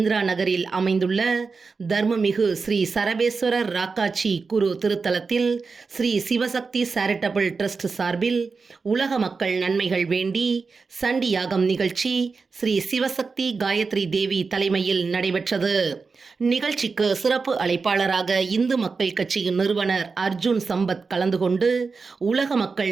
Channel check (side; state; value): left; quieter; 4.6 dB